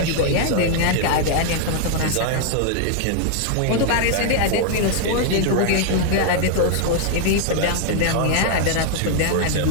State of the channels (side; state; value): both; different; correlation 0.00